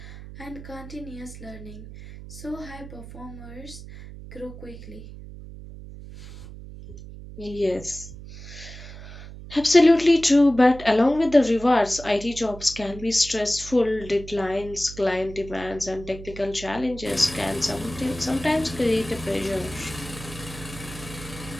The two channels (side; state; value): right; noise; hum, 14 dB below the sound